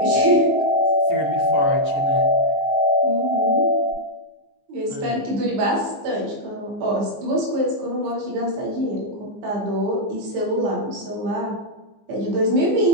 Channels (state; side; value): late; left; 15 ms